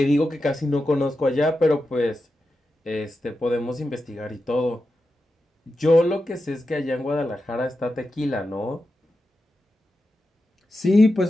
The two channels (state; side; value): normal; both; correlation 0.90